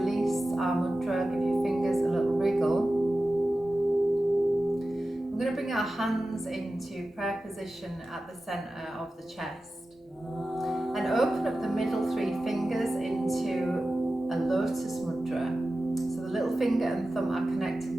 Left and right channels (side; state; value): both; normal; correlation 0.94